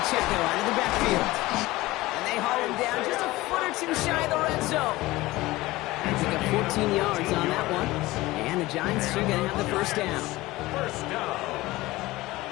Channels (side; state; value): right; quieter; 19.0 dB